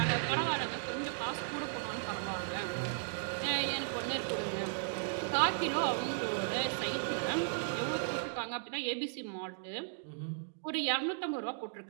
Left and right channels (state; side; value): silent; left; digital silence